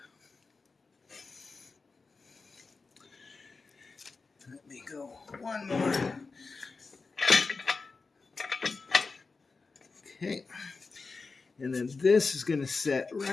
Let me go one more. Okay. And then this is going to set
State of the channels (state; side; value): quieter; right; 4.2 dB